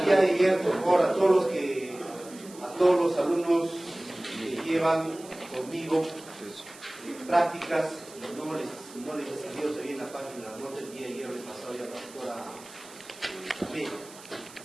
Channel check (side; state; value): right; noise; hiss, 19 dB below the sound